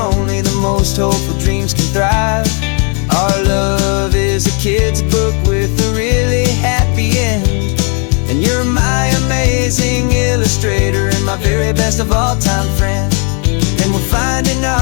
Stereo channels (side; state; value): right; quieter; 38.1 dB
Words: the most hopeful dreams can thrive. Our love is a kid's book with a really happy end, and you're my amazing illustrator and my very best of all time friend. And we're finding